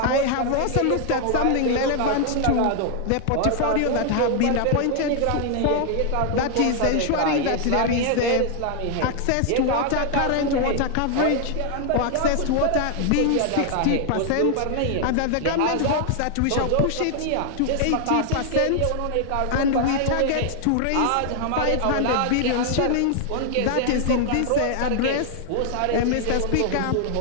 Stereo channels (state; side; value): different; both; correlation 0.00